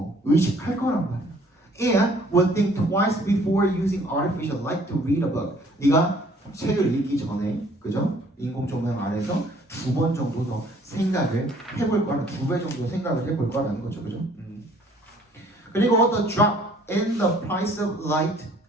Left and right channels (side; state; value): both; normal; correlation 0.58